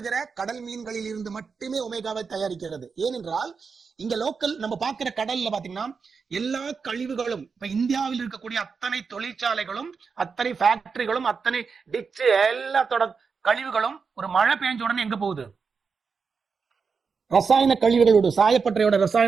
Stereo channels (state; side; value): quieter; left; 5.4 dB